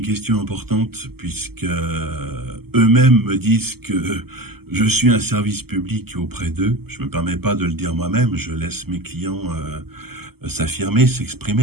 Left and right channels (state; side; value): late; left; 0.96 ms